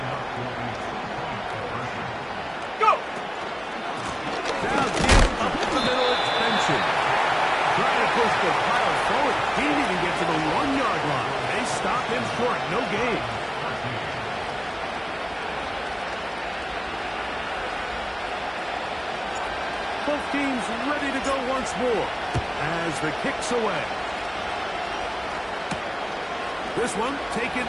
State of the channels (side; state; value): both; identical; correlation 1.00